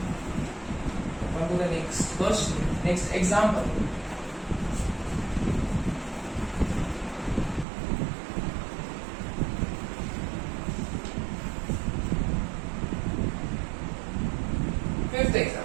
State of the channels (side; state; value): left; drops out; at 7.7 s